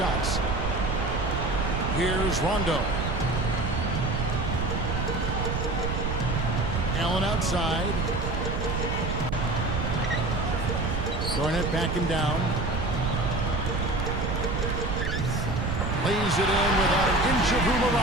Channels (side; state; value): right; noise; rumble, 1 dB below the sound